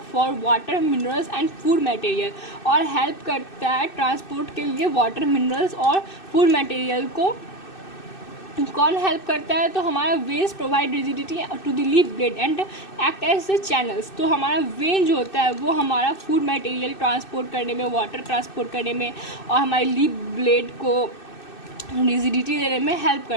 for water minerals and food material, और हेल्प करता है ट्रांसपोर्ट के लिए वाटर मिनरल्स और फूड मटेरियल को। कौन हेल्प करता है, तो हमारा veins provide rigidity to the leaf blade and act as the channels. तो हमारा वेन जो होता है वो हमारा फूड मटेरियल ट्रांसपोर्ट करने में, वाटर ट्रांसपोर्ट करने में और हमारे लीफ ब्लेड को रिजिडिटी देने में हेल्प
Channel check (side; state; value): right; late; 2.6 ms